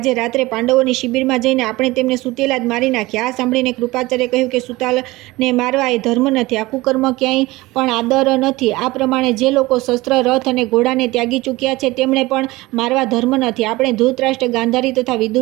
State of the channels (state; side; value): quieter; left; 20.3 dB